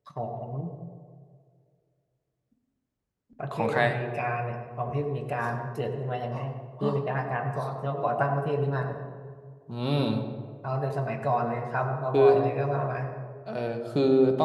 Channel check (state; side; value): identical; both; correlation 1.00